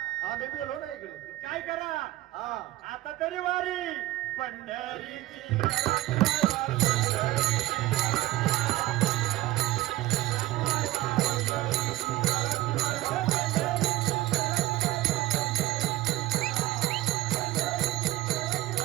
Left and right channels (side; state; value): left; quieter; 16.5 dB